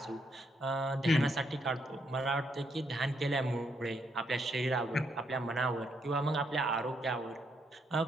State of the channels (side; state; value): both; normal; correlation 0.76